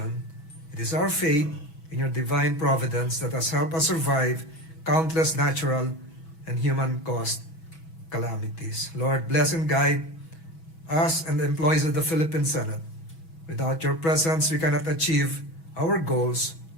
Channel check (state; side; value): late; right; 6.1 ms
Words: It is our faith in your divine providence that has helped us survive countless natural and human-caused calamities. Lord, bless and guide us and the employees of the Philippine Senate. Without your presence, we cannot achieve our goals